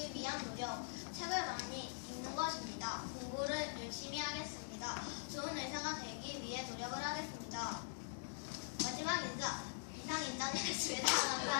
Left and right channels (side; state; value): right; silent; digital silence